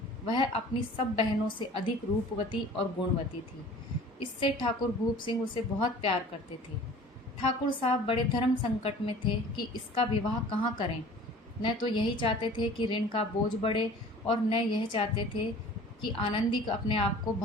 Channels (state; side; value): normal; both; correlation 0.46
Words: वह अपनी सब बहनों से अधिक रूपवती और गुणवती थी। इससे ठाकुर भूप सिंह उसे बहुत प्यार करते थे। ठाकुर साहब बड़े धर्म संकट में थे कि इसका विवाह कहाँ करें। न तो यही चाहते थे कि ऋण का बोझ बढ़े, और न यह चाहते थे कि आनंदी अपने आप को